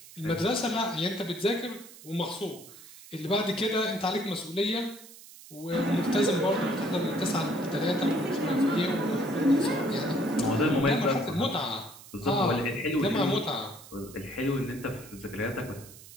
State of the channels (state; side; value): noise; right; hiss, 19 dB below the sound